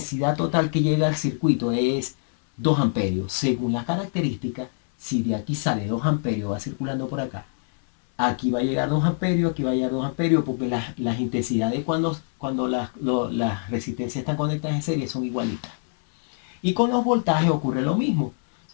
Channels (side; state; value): right; silent; 62 dB below the other